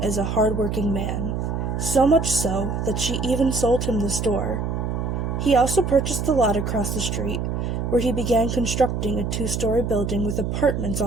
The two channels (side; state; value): right; noise; hum, 2 dB below the sound